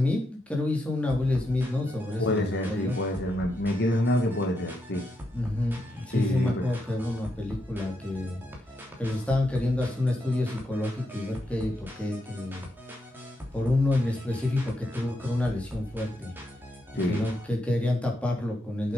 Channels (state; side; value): normal; both; correlation 0.82